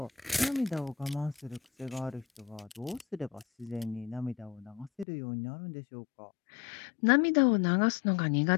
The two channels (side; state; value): right; drops out; at 5.1 s